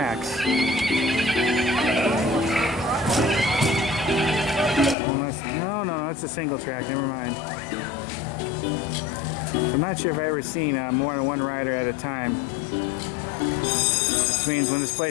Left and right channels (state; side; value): drops out; right; at 5.0 s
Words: Unless, no, that's a single track, never mind. So I'm not sure if I've ever seen more than one rider at a time. Which means when this